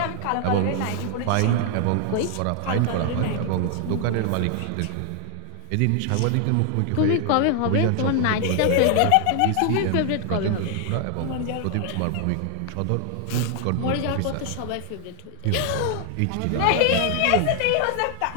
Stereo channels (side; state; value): both; different; correlation 0.00